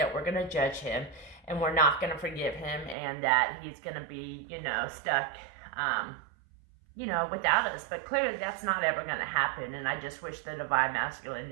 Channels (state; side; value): drops out; left; at 3.0 s